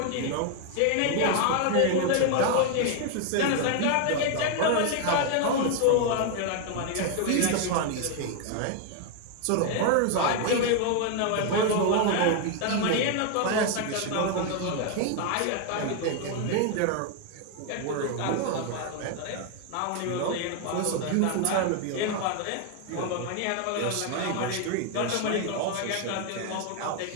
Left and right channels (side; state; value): both; different; correlation 0.01